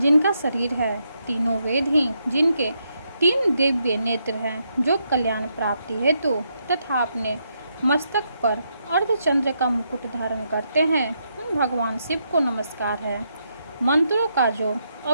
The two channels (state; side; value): inverted; both; correlation -0.79